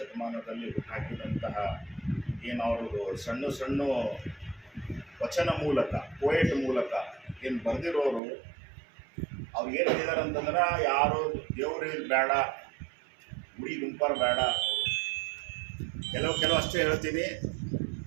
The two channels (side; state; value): left; drops out; at 8.2 s